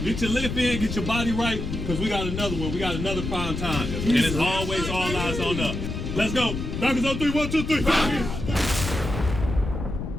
get your lift in, get your body right, because we got another one. We got another prime time. And it's always all eyes on us. Let's go. Falcons on 3, 1, 2, 3.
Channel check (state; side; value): noise; left; rumble, 5 dB below the sound